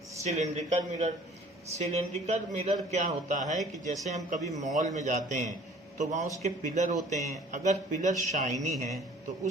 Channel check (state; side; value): normal; both; correlation 0.51